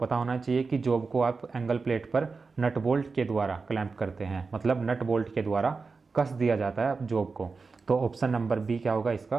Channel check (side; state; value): left; quieter; 4.4 dB